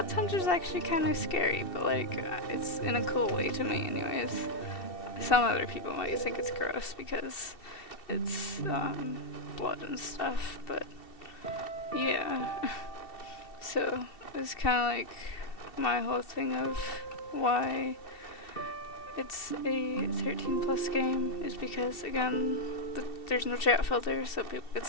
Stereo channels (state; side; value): late; right; 2.7 ms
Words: tundra is actually kind of scary, but like it's in a cool way to me anyways. Some other people might think it's gross because it's blood and stuff, but yeah. So it's kind of like my whole thing of why it's a 13 plus game is because, again, there's no chat filter, so people could